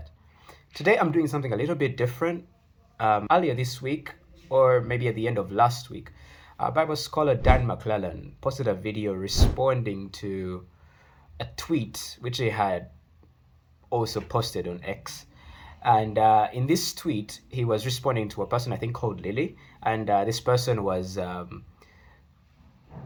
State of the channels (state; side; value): identical; both; correlation 1.00